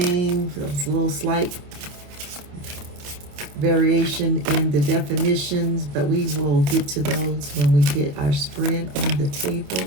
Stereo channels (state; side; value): late; left; 28 ms